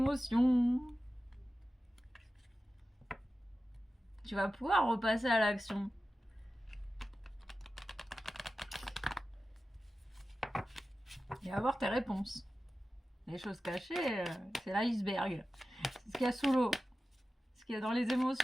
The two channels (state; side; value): normal; both; correlation 0.94